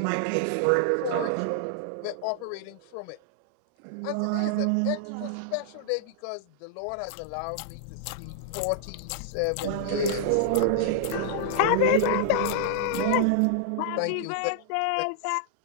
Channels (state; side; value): different; both; correlation -0.01